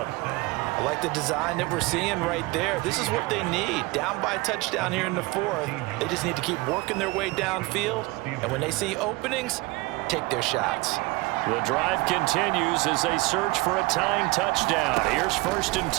I like the design that we're seeing right there. This is what they need. Down by a touchdown here in the 4th. They just need to keep working their way downfield. And when they see openings, take their shots. The drive continues as they search for a tying touchdown. Here's 1st and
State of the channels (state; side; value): quieter; left; 23.1 dB